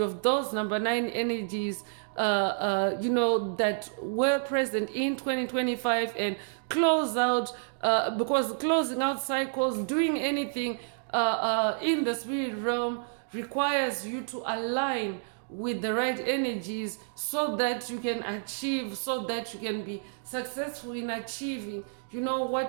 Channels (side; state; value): left; silent; digital silence